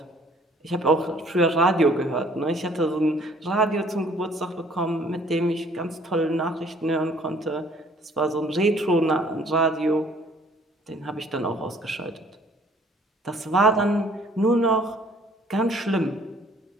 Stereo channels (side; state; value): both; normal; correlation 0.58